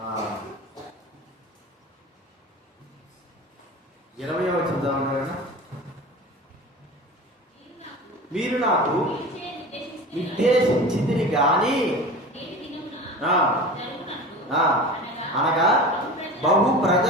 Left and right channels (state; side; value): normal; both; correlation 0.34